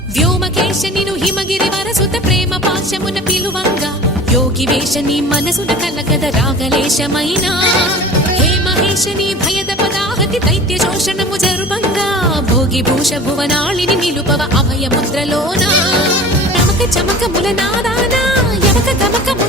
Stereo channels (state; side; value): normal; both; correlation 0.40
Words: వ్యోమకేశనిను హిమగిరి వరసుత ప్రేమ పాశమున పిలువంగా యోగి వేషని మనసున కలగద రాగలేశమైన హే మహేశని భయద పదాహతి దైత్య శోషణము జరుబంగా భోగి భూష భువనాళిని నిలుపవ అభయముద్రలోన నమక చమకముల నాదాన యమక